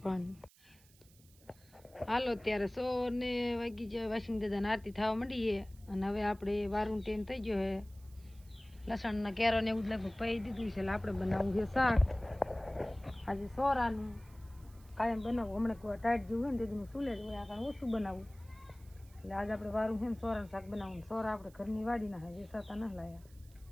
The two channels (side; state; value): right; noise; hiss, 27 dB below the sound